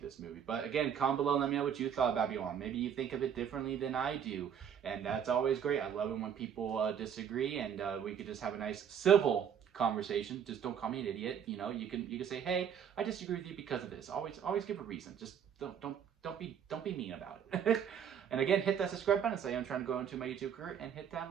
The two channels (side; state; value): left; quieter; 8.3 dB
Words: movie. But again, comment below and let me know what you thought about Babylon. Maybe you think of it differently than I do. And that's always great. I love it when people disagree, and we could just have a nice civil conversation. Just don't call me an idiot. You can say, hey, I disagree with you because of this. Always give a reason. Just don't be mean about it. And again, hit that subscribe button. Say I'm trying to go into my YouTube career, and hit that